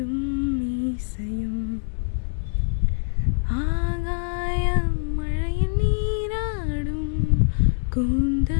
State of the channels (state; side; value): silent; right; digital silence